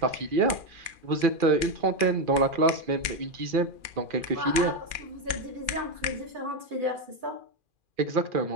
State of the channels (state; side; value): late; left; 2.4 ms